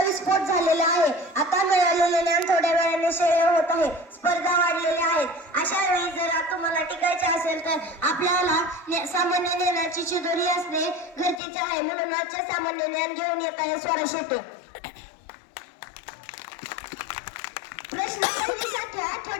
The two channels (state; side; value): drops out; right; at 11.4 s